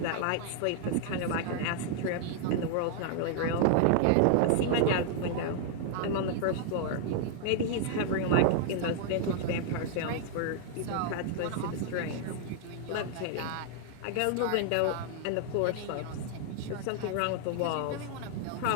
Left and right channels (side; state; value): both; different; correlation -0.01